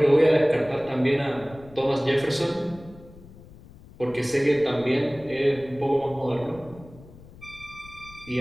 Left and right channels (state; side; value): noise; left; rumble, 21 dB below the sound